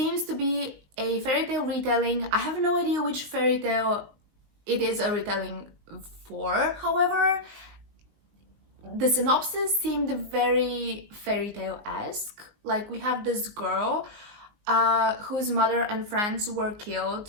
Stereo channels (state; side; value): late; left; 19 ms